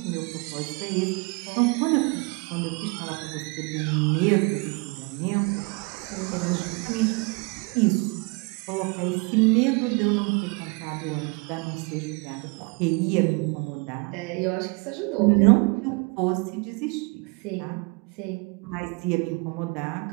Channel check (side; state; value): left; quieter; 30.3 dB